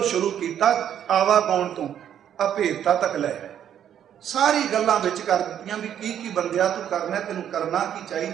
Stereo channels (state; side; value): quieter; left; 9.8 dB